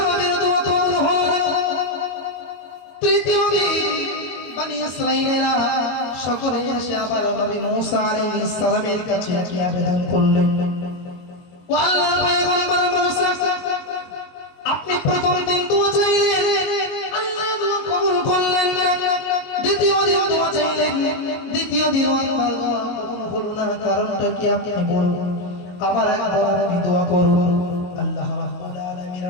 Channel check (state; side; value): late; right; 22 ms